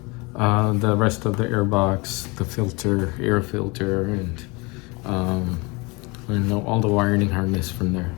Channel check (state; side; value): quieter; right; 27.1 dB